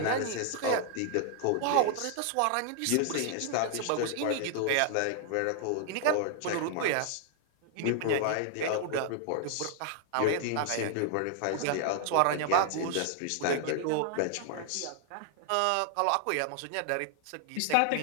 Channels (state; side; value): different; both; correlation 0.00